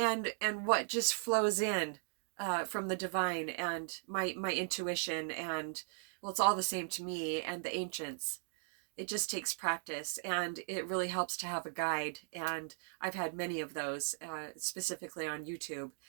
what just flows in from the divine, and my intuition. And well, it's all the same to me and the ancients. It just takes practice, and it really helps to have a guide. And I've had many of those, specifically on YouTube.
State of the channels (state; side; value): silent; left; digital silence